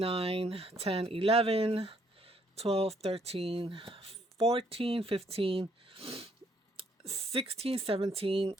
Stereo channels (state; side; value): normal; both; correlation 0.68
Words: 10, 11, 12, 13, 14, 15, 16, 17,